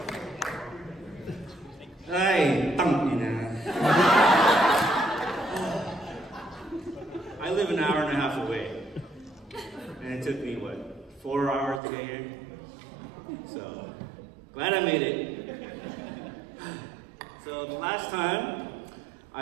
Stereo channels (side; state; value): left; drops out; at 11.8 s